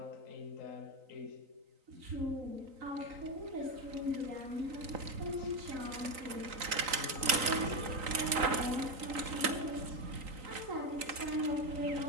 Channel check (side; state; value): left; late; 3.9 ms